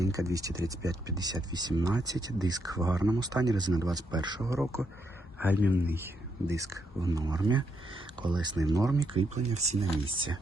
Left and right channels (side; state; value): both; normal; correlation 0.78